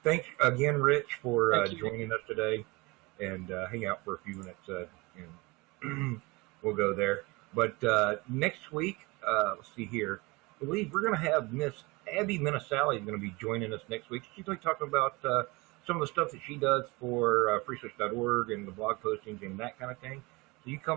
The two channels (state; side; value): quieter; left; 24.7 dB